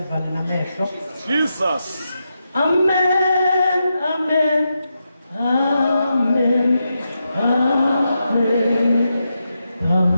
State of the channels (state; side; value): inverted; both; correlation -0.86